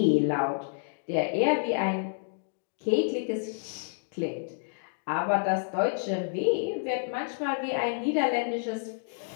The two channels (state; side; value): silent; right; digital silence